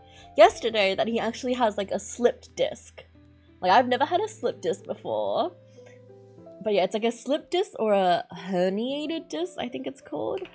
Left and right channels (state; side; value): identical; both; correlation 1.00